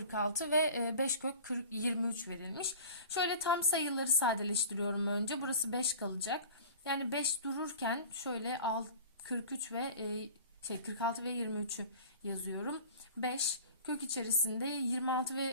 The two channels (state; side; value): inverted; both; correlation -0.40